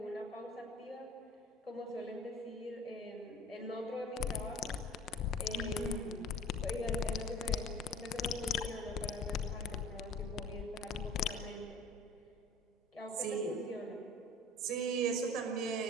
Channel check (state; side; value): normal; both; correlation 0.45